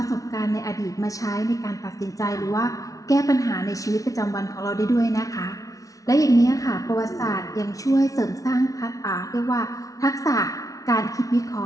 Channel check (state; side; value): late; right; 0.17 ms